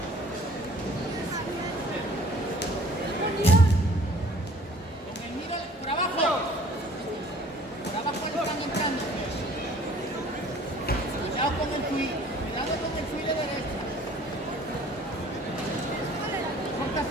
Con el miro por abajo. Por abajo le están entrando. Cuidado con el fui de derecha.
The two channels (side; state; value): both; normal; correlation 0.52